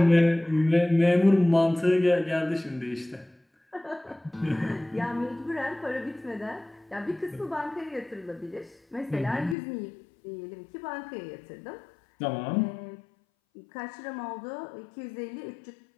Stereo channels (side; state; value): right; drops out; at 9.6 s